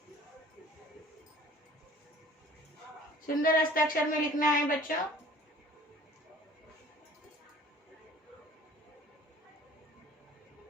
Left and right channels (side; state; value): both; normal; correlation 0.50